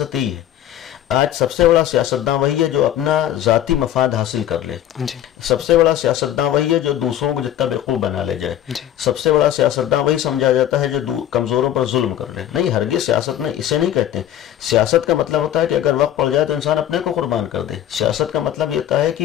یہی ہے. آج سب سے بڑا سیاستداں وہی ہے جو اپنا ذاتی مفاد حاصل کر لے. سب سے بڑا سیاستداں وہی ہے جو دوسروں کو جتنا بیوقوف بنا لے جائے. سب سے بڑا سیاستداں وہی سمجھا جاتا ہے جو کمزوروں پر ظلم کر لے. نہیں، ہرگز سیاست میں اسے نہیں کہتے. سیاست کا مطلب ہوتا ہے کہ اگر وقت پڑ جائے تو انسان اپنے کو قربان کر دے. سیاست کا مطلب یہ ہوتا ہے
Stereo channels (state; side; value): quieter; right; 11.6 dB